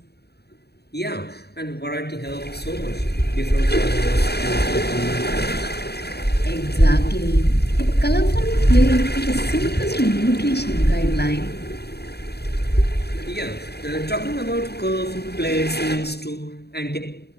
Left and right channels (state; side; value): late; right; 0.48 ms